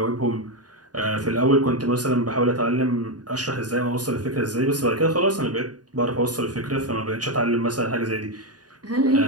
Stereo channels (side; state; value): left; late; 0.69 ms